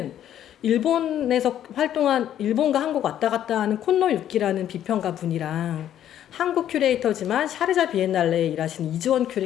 일본에서 활동한, 일본과 한국 왔다 갔다 하는 콘노 유키라는 비평가 분이랑 한국 큐레이터지만 샤르자 비엔날레에 일하시는 이주원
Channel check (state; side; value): quieter; right; 10.9 dB